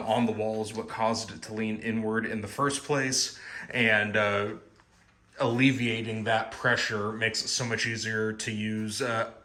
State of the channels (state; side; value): identical; both; correlation 1.00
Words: the wall is what caused it to lean inward in the first place. And alleviating that pressure makes it so much easier to use